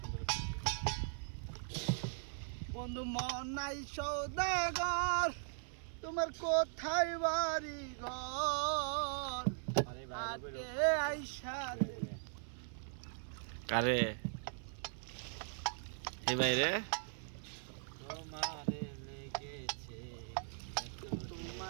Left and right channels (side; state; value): left; silent; 51 dB below the other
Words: সুন্দর বন্ধু মন নাই সৌদাগর, তোমার কোথায় বাড়ি ঘর? আরে আটে ভাই আইসা কারে এই বাইরে তোমারে লেগেছে